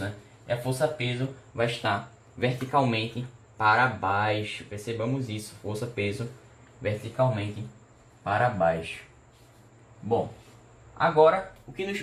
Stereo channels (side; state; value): both; identical; correlation 1.00